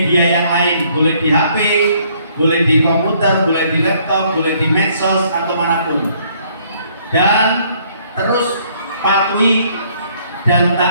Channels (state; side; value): inverted; both; correlation -0.64